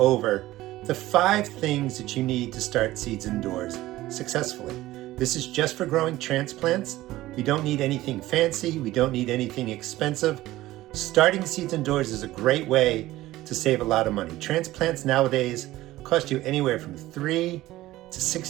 the 5 things that you need to start seeds indoors successfully. This is just for growing transplants. We don't need anything fancy. We don't need anything expensive. Starting seeds indoors is a great way to save a lot of money. Transplants nowadays cost you anywhere from $3 to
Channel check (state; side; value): quieter; left; 16.5 dB